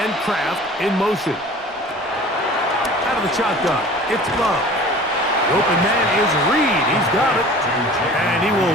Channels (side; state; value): both; normal; correlation 0.44